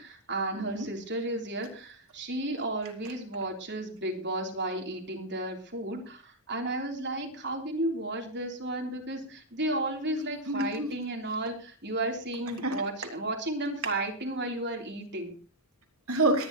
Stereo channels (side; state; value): both; normal; correlation -0.05